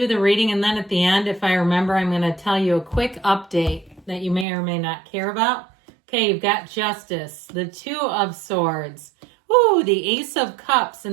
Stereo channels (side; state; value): left; drops out; at 4.5 s